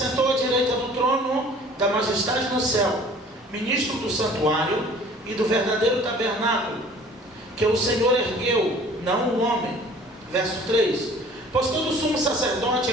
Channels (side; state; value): both; normal; correlation 0.50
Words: à direita do trono da majestade no céu, ministro do santuário e do verdadeiro tabernáculo que o Senhor ergueu, não o homem. Verso 3: pois todo sumo sacerdote